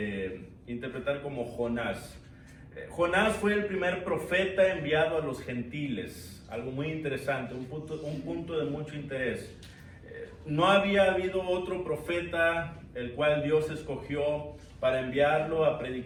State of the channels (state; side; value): identical; both; correlation 1.00